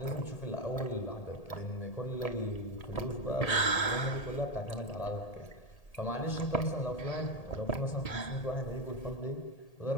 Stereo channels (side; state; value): right; late; 1.8 ms